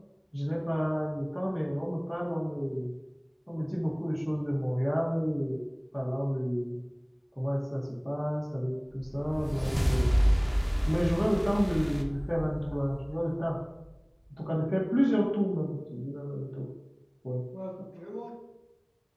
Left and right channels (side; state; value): both; identical; correlation 1.00